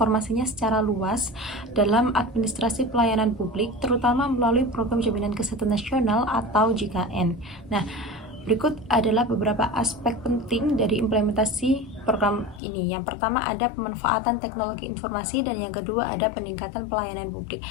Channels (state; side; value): drops out; right; at 12.6 s